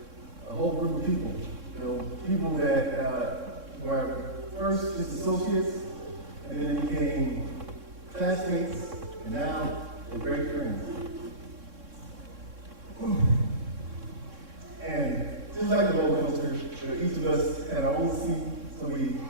a whole group of people. You know, people that were first just associates, and then they became classmates, and now they're great friends. And just like the roller coaster, each of us had our own seat, so we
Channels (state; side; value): late; left; 3.6 ms